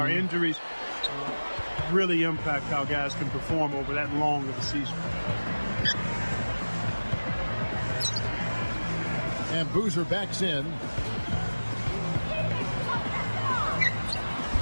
Injuries really impact how guys can perform over that long of a season. And Boozer backs in.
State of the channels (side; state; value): both; inverted; correlation -1.00